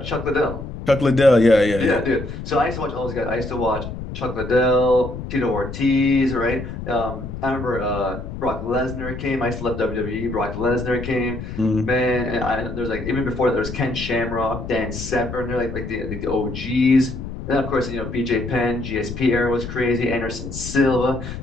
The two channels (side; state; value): left; noise; rumble, 9 dB below the sound